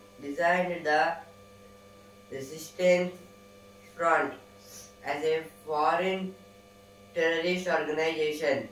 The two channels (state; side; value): identical; both; correlation 1.00